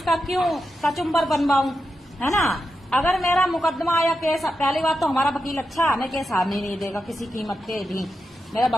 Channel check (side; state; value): both; normal; correlation 0.88